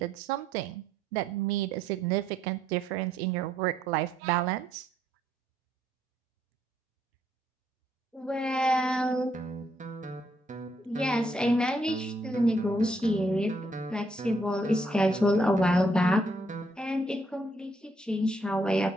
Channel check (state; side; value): normal; both; correlation 0.72